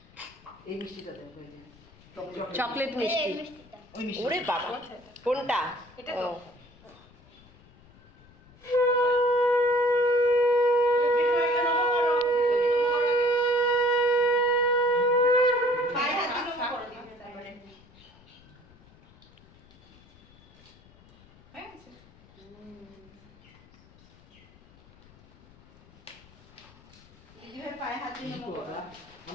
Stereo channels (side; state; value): left; noise; rumble, 26 dB below the sound